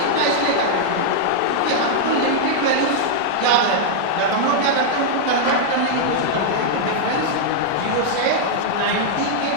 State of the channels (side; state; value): both; different; correlation -0.01